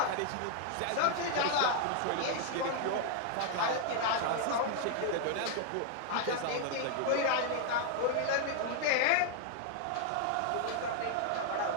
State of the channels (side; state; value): both; different; correlation 0.00